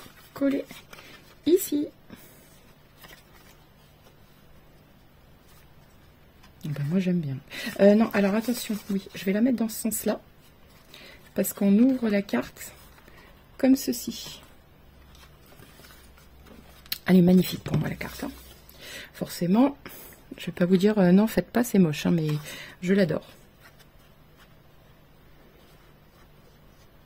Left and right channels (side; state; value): both; identical; correlation 1.00